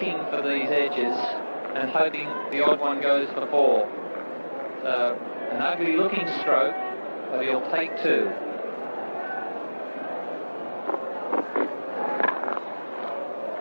for these edges and hoping the odd one goes for four. So an ugly looking stroke, but he'll take two.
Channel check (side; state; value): both; inverted; correlation -1.00